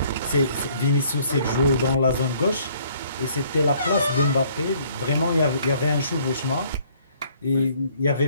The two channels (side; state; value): both; inverted; correlation -0.61